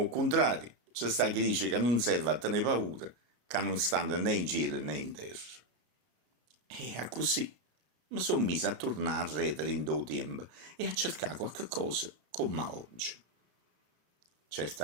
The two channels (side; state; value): left; late; 33 ms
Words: contrario, c'è sta chi dice che non serve a tenere paura, che non stanno né in cielo né in terra. E a così mi sono messo a tornare a redere in do tempo e a cercare qualche cosa come oggi.